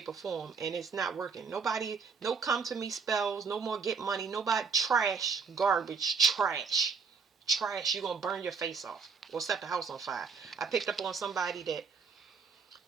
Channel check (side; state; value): left; quieter; 5.4 dB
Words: or form, and it's not working. Nobody, no come to me spells, no more get money, nobody, trash, garbage, trash. You're going to burn your face off or set the house on fire. I picked up on somebody that